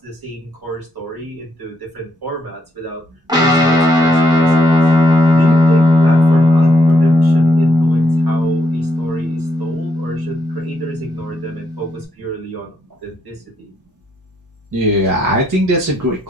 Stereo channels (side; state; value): both; normal; correlation 0.76